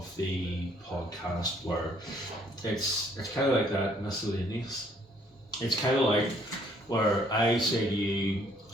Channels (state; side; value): normal; both; correlation 0.64